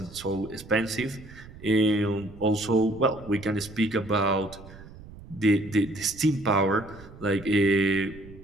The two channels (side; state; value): right; noise; rumble, 18 dB below the sound